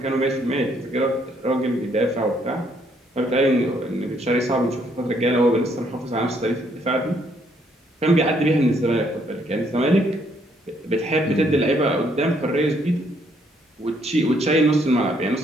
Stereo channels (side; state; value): both; normal; correlation 0.69